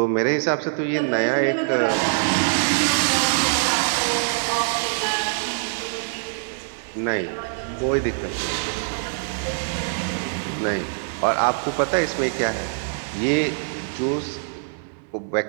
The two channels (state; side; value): silent; left; digital silence